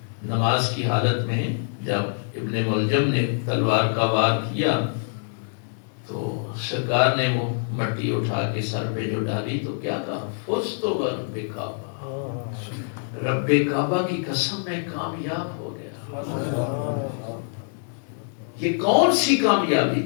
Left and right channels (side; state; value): right; silent; digital silence